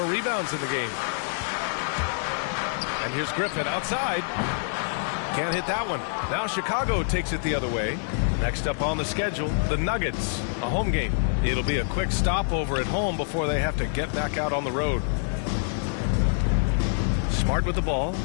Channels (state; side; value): silent; right; digital silence